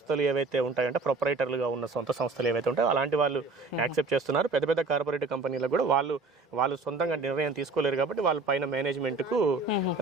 ఏవైతే ఉంటాయంటే ప్రొపరైటర్లుగా ఉన్న సొంత సంస్థలు ఏవైతే ఉంటాయో అలాంటి వాళ్ళు యాక్సెప్ట్ చేస్తున్నారు. పెద్ద పెద్ద కార్పొరేట్ కంపెనీలకు కూడా వాళ్ళు సొంతంగా నిర్ణయం తీసుకోలేరు కాబట్టి వాళ్ళ పైన మేనేజ్మెంట్కు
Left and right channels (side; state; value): left; quieter; 3.6 dB